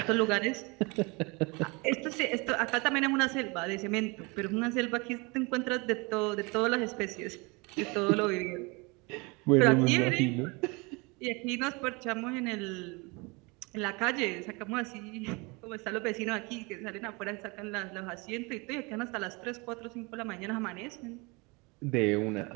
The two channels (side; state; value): left; quieter; 27.5 dB